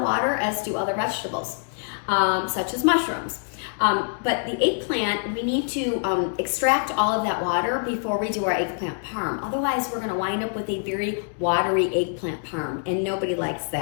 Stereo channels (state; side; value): silent; right; digital silence